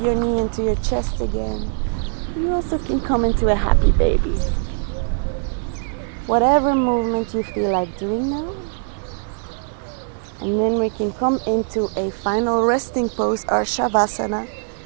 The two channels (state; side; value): silent; left; digital silence